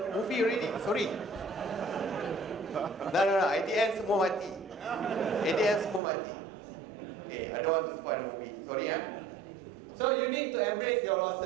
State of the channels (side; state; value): left; drops out; at 6.0 s